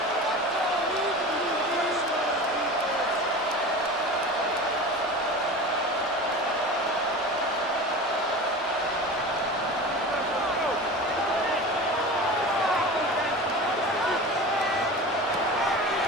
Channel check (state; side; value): normal; both; correlation 0.33